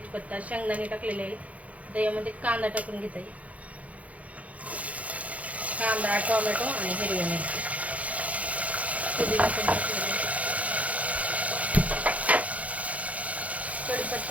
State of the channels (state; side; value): late; left; 0.068 ms